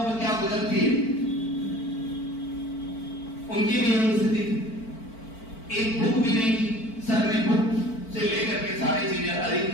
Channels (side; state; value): right; late; 4.5 ms